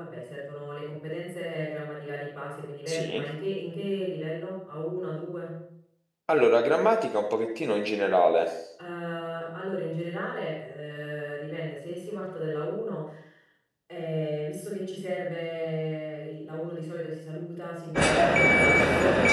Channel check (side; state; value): both; identical; correlation 1.00